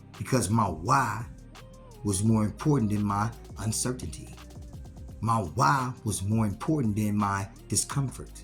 Because my why was more important than my uncertainty. My why was more important than my discomfort.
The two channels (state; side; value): identical; both; correlation 1.00